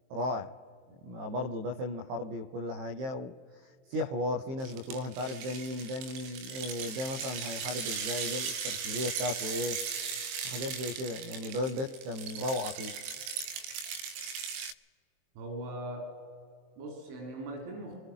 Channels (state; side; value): late; left; 23 ms